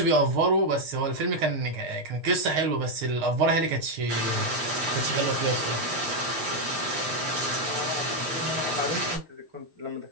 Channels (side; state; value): left; late; 6.5 ms